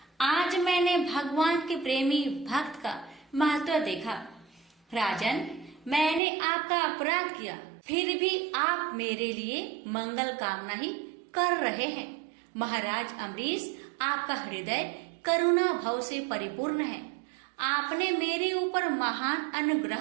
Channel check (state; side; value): drops out; left; at 6.2 s